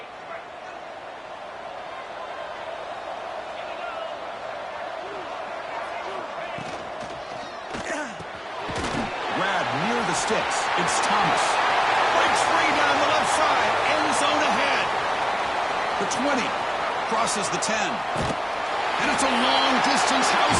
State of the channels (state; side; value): identical; both; correlation 1.00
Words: Sticks. It's Thomas. Breaks free down the left side. End zone ahead. The 20. Crosses the 10. And it's a long-distance